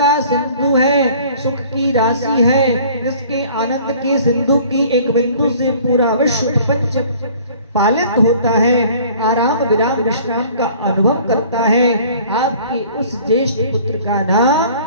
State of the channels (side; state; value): both; inverted; correlation -0.51